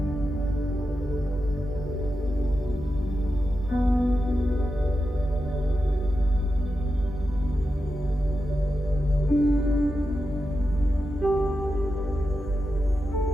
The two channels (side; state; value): both; normal; correlation 0.90